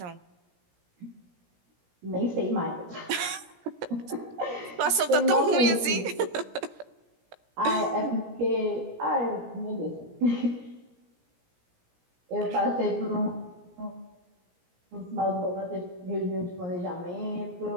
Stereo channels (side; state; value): left; late; 17 ms